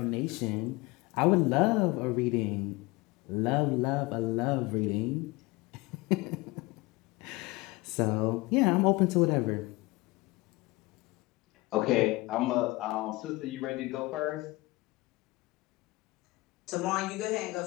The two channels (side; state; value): right; quieter; 22.0 dB